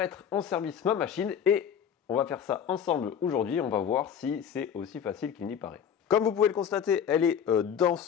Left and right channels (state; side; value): quieter; right; 8.2 dB